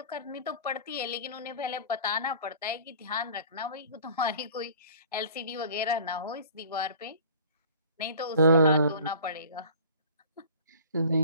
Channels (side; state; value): both; inverted; correlation -0.46